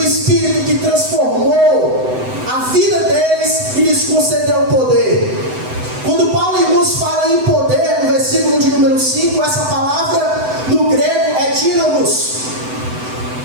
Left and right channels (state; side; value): late; left; 7.9 ms